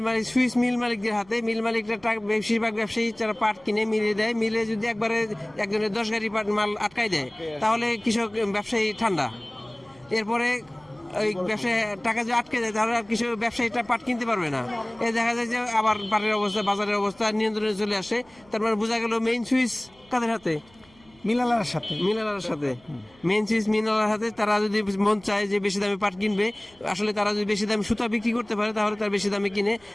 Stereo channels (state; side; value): noise; right; hum, 29 dB below the sound